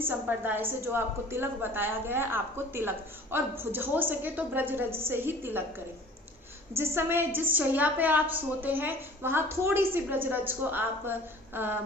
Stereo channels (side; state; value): both; normal; correlation 0.47